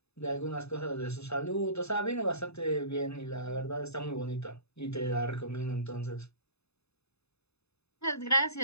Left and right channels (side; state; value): right; late; 0.79 ms